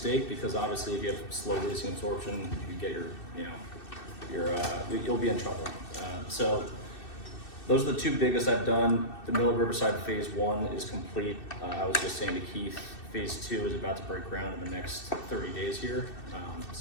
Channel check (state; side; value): late; right; 2.6 ms